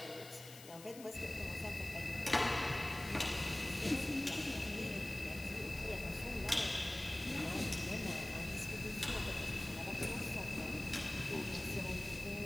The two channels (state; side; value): noise; left; hiss, 16 dB below the sound